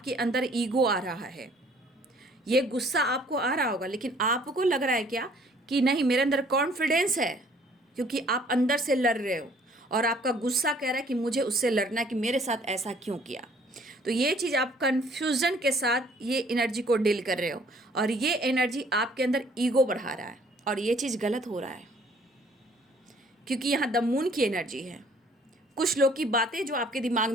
अंदर ईगो आ रहा है। ये गुस्सा आपको आ रहा होगा, लेकिन आपको लग रहा है क्या कि नहीं, मेरे अंदर कॉन्फिडेंस है, क्योंकि आप अंदर से लड़ रहे हो और आपका गुस्सा कह रहा है कि मुझे उससे लड़ना है, कि मेरे साथ ऐसा क्यों किया। तो ये चीज़ आप कन्फ्यूज़न के साथ ये एनर्जी को डील कर रहे हो, और ये एनर्जी आपके अंदर ईगो बढ़ा रहा है, और ये चीज़ गलत हो रहा है, क्योंकि यहाँ द मून की एनर्जी है। कुछ लोग की बातें जो आपके दिमाग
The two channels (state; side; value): normal; both; correlation 0.58